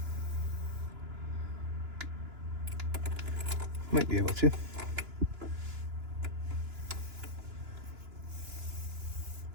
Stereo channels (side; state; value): left; late; 2.9 ms